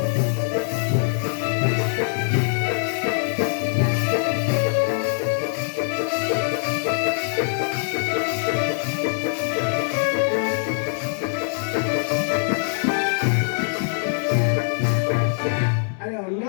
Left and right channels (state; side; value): silent; right; digital silence